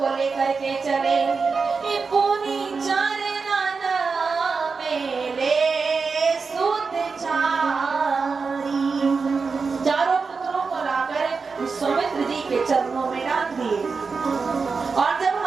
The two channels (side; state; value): left; quieter; 4.8 dB